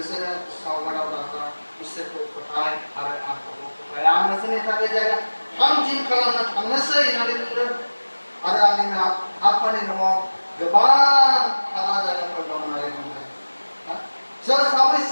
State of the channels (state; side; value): inverted; both; correlation -1.00